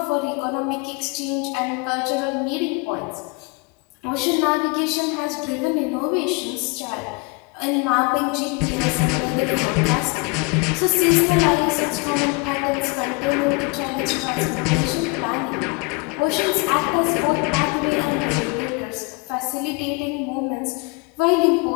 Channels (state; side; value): quieter; right; 29.1 dB